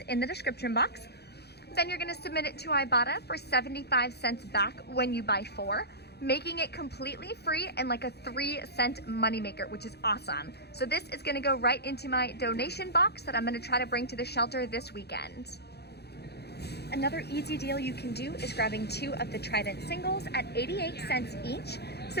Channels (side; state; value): right; late; 0.48 ms